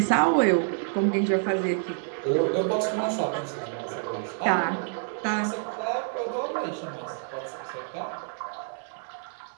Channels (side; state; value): left; silent; digital silence